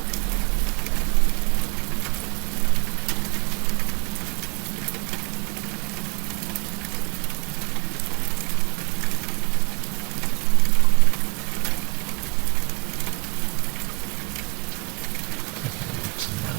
forget what's on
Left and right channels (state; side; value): quieter; left; 31.3 dB